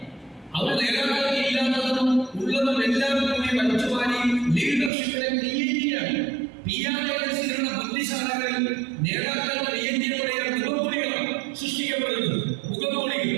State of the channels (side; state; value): left; drops out; at 4.9 s